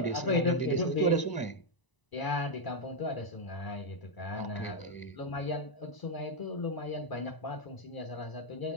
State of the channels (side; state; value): right; late; 1.0 ms